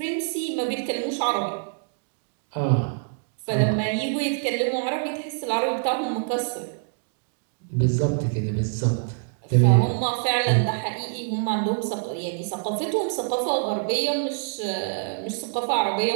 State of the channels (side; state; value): left; silent; digital silence